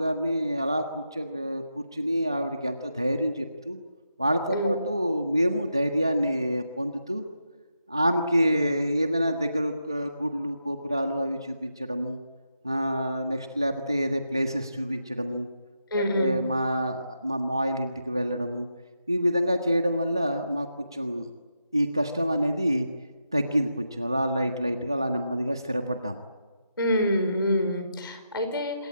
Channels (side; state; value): both; inverted; correlation -0.85